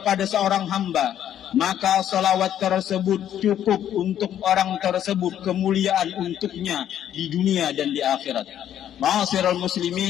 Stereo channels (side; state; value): right; quieter; 10.6 dB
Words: seorang hamba, maka selawat tersebut cukup untuk orang tersebut, kemuliaan untuknya di dunia dan di akhirat. Ma'asyiral